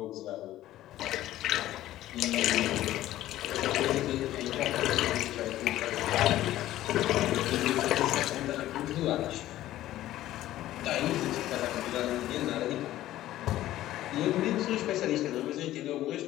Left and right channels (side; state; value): right; quieter; 14.4 dB